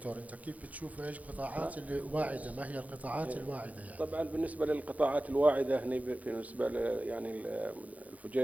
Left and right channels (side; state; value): left; late; 0.072 ms